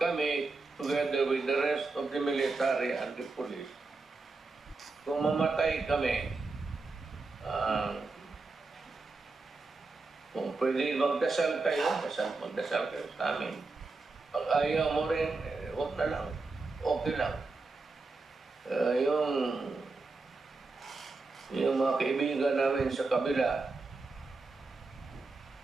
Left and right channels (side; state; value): left; quieter; 3.7 dB